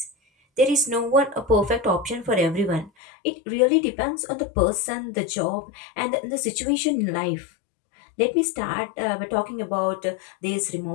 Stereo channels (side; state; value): right; drops out; at 2.9 s